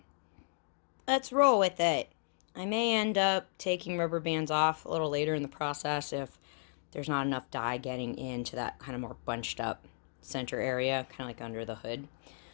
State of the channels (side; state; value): right; silent; digital silence